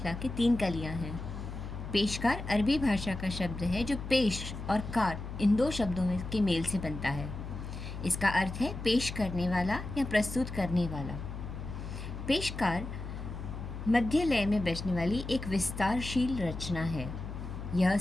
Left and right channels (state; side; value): noise; left; hum, 8 dB below the sound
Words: की 3 कलियां हैं। पेशकार अरबी भाषा का शब्द है जो पेश और कार इन 2 शब्दों के मेल से बनता है। इसका अर्थ है पेश करने वाला या प्रस्तुत करने वाला। पेशकार मध्य लय में बजने वाली एक विस्तारशील रचना है। यह